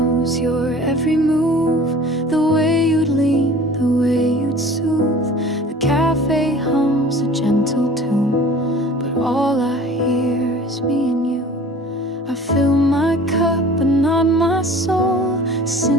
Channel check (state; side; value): normal; both; correlation 0.45